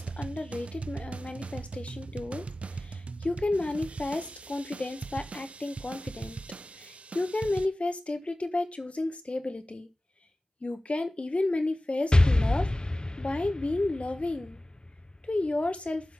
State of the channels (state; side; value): normal; both; correlation 0.97